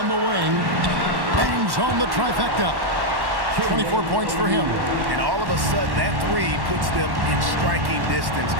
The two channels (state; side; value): late; left; 1.1 ms